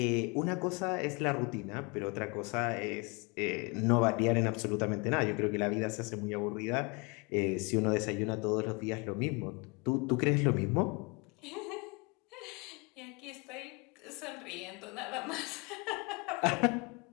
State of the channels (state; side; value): quieter; right; 30.0 dB